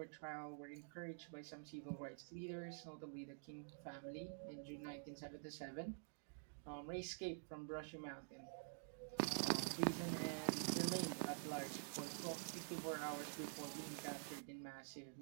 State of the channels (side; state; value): left; silent; digital silence